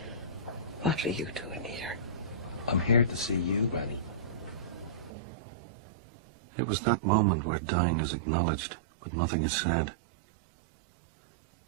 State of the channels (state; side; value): drops out; left; at 5.1 s